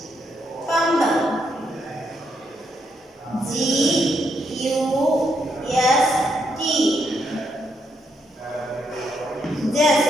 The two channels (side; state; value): both; normal; correlation 0.78